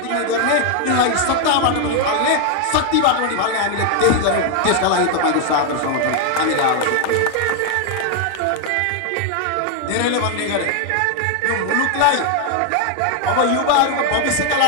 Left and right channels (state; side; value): different; both; correlation 0.01